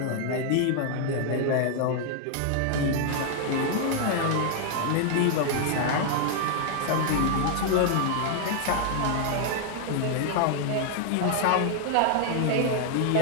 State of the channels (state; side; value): different; both; correlation 0.00